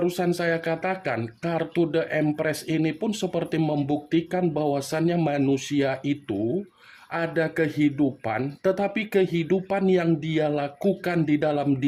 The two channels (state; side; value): identical; both; correlation 1.00